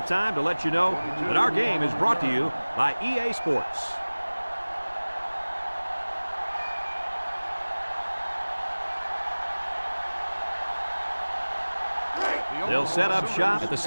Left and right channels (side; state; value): both; inverted; correlation -1.00